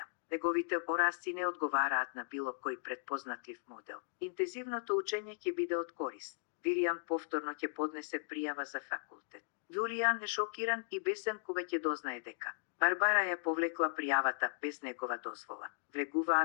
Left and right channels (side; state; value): right; silent; digital silence